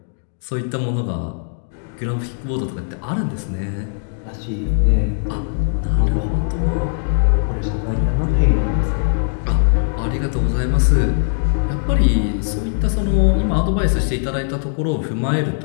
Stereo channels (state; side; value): silent; right; 66 dB below the other